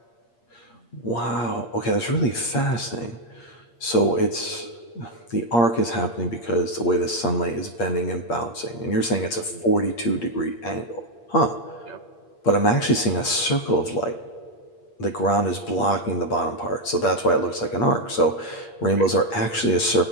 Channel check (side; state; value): right; late; 8.5 ms